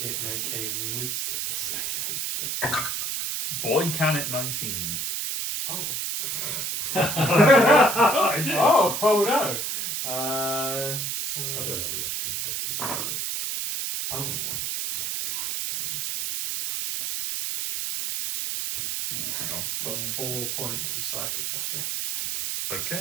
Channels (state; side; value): noise; right; hiss, 1 dB below the sound